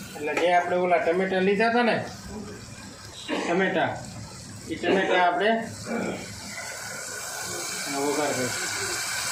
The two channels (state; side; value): identical; both; correlation 1.00